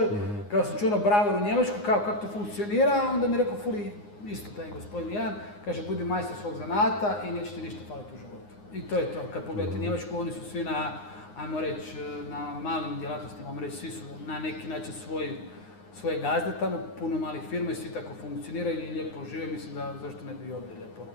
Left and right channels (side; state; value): right; late; 9.7 ms